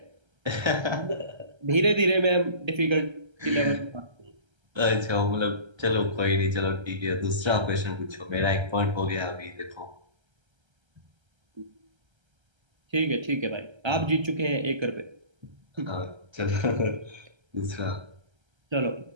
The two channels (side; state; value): left; late; 1.3 ms